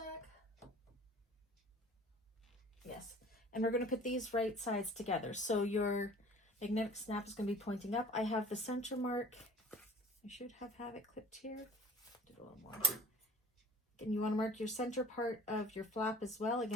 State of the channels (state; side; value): normal; both; correlation 0.47